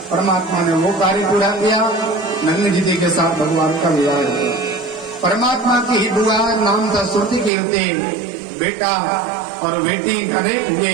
परमात्मा ने वो कार्य पूरा किया। नग्नजिती के साथ भगवान का विवाह हुआ। परमात्मा की ही बुआ नाम था श्रुति कीर्ति, बेटा और बेटी अनेक हुए।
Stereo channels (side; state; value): left; drops out; at 7.5 s